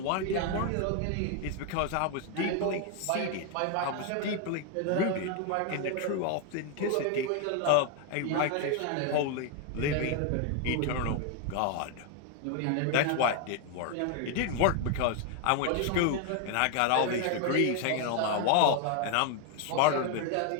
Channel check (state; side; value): different; both; correlation 0.01